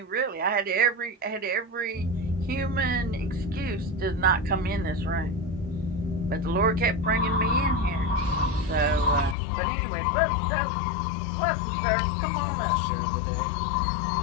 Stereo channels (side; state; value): right; drops out; at 9.3 s